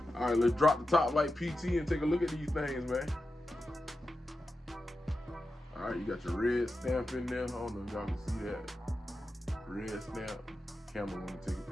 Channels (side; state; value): both; normal; correlation 0.91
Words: All right, let's drop the top like PT and take a look at these things, man. All right, you got your red stamp in there. I don't know if y'all can see that. Red stamp. Camera want to take a